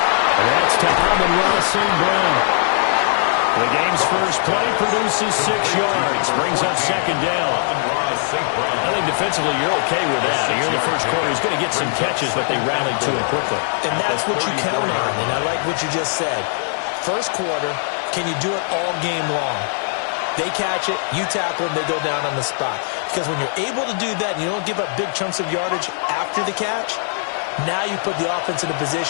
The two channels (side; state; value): right; silent; digital silence